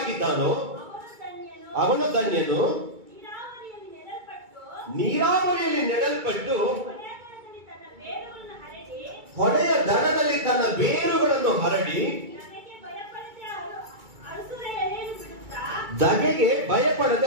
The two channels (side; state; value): left; late; 2.3 ms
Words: ಅವನು ಧನ್ಯನು. ನೀರಾವರಿಯಲ್ಲಿ ನೆಡಲ್ಪಟ್ಟು ಹೊಳೆಯ ದಡದಲ್ಲಿ ತನ್ನ ಬೇರುಗಳನ್ನು ಹರಡಿ ಧಗೆಗೆ